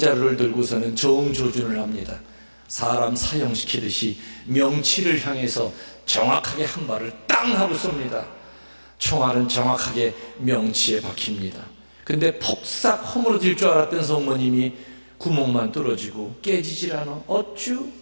들고서는 정조준을 합니다. 사람 사형시키듯이 명치를 향해서 정확하게 한 발을 땅 하고 쏩니다. 총알은 정확하게 명치에 박힙니다. 근데 폭삭 허물어질 줄 알았던 성모님이 구멍만 뚫어지고 깨지질 않아. 어쭈?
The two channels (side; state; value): both; inverted; correlation -1.00